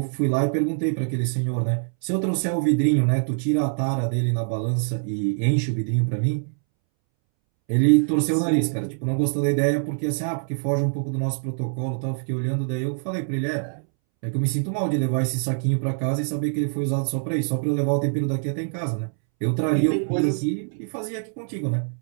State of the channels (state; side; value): silent; left; 62 dB below the other